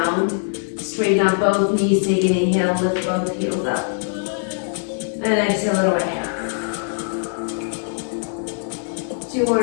Straighten up both knees. Take an inhale. Lift both heels up. And exhale it away. 2 more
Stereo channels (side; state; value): right; silent; digital silence